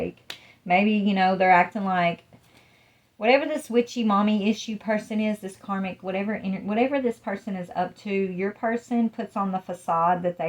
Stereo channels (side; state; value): both; identical; correlation 1.00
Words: Maybe, you know, they're acting like, whatever this witchy mommy issue person is, this karmic, whatever this person is up to, your person puts on the facade that